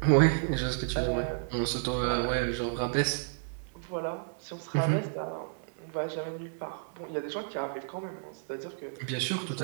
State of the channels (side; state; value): left; silent; digital silence